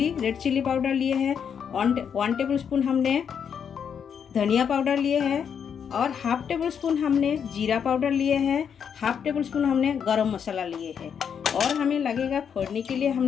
रेड चिली पाउडर लिए है, 1 टेबल स्पून हमने धनिया पाउडर लिए है और 1/2 टेबल स्पून हमने जीरा पाउडर लिए है, 1/2 टेबल स्पून हमने गरम मसाला लिए है। और हमें लगेगा फोड़ने के लिए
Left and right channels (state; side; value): quieter; right; 7.5 dB